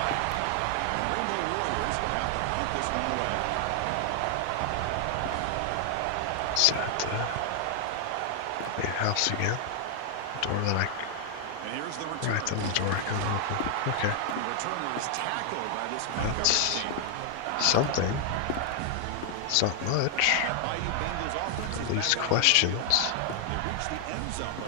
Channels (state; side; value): different; both; correlation 0.00